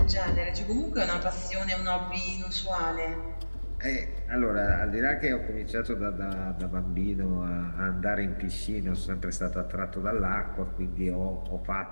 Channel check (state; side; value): inverted; both; correlation -1.00